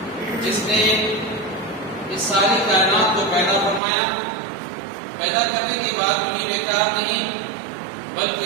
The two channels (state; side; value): drops out; left; at 3.8 s